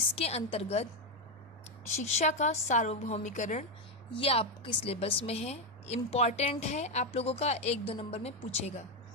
अंतर्गत शिक्षा का सार्वभौमिकरण ये आपके सिलेबस में है, इम्पॉर्टेंट है, आप लोगों का 1-2 नंबर में पूछेगा।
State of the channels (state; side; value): normal; both; correlation 0.07